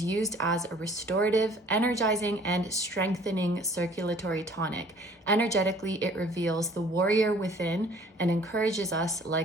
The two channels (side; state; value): both; normal; correlation 0.54